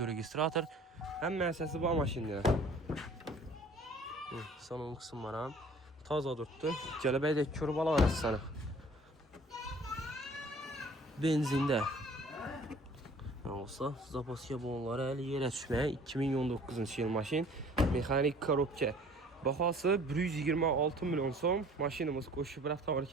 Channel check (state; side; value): normal; both; correlation 0.51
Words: registrator, həm mərsəsi bu maşindir. Salon qısımları taza tutdu. Gəlibək də kör bala var sana. Benzində. Olsa, zapaskiya bonları əli yerə düşməyə 2019-cu yıl maşin. Mexanik korobka. Baxası 126 milyon son. Maşinimiz qoşub